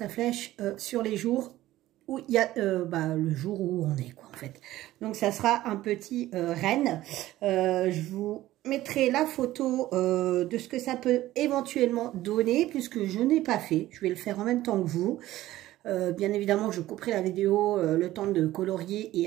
flèche sur les jours où il y a le jour où on est, quoi, en fait. Donc, ça sera un petit renne. Je vous mettrai la photo de ce que ça peut éventuellement donner, puisque je n'ai pas fait. Je vais le faire en même temps que vous. Bien évidemment, je couperai la vidéo le temps de colorier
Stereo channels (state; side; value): quieter; left; 15.4 dB